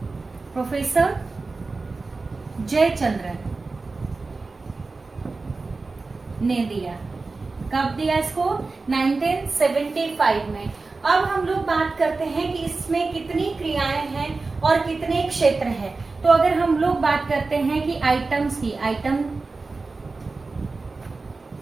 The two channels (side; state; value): left; quieter; 3.8 dB